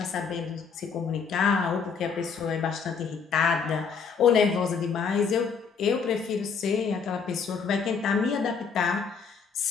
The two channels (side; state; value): right; quieter; 5.9 dB